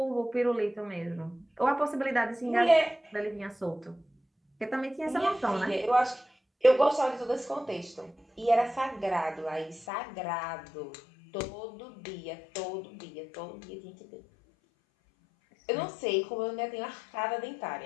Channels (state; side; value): drops out; right; at 9.9 s